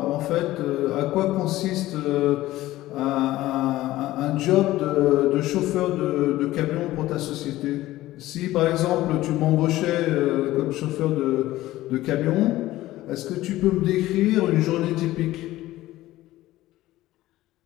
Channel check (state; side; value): quieter; right; 16.1 dB